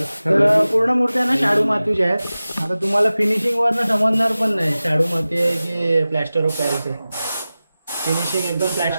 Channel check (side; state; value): both; inverted; correlation -0.96